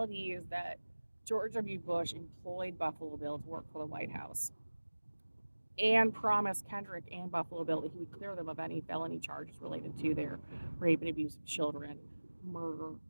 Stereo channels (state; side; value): inverted; both; correlation -1.00